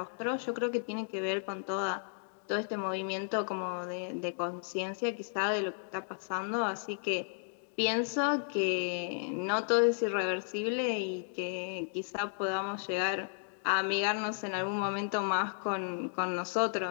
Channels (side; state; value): right; silent; digital silence